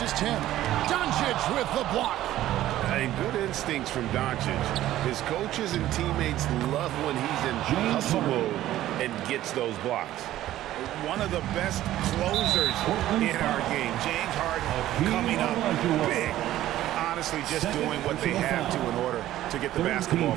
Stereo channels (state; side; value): quieter; left; 13.9 dB